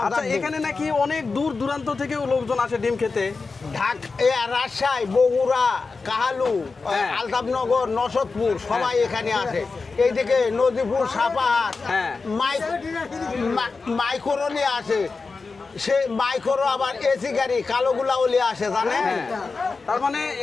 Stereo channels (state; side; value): quieter; right; 4.3 dB